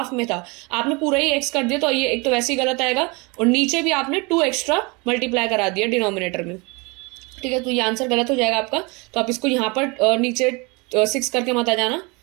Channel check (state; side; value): quieter; left; 27.7 dB